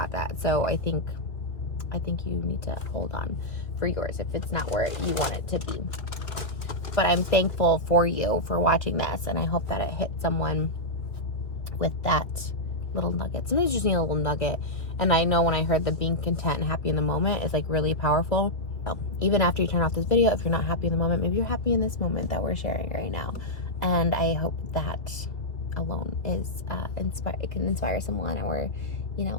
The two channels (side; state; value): right; late; 2.2 ms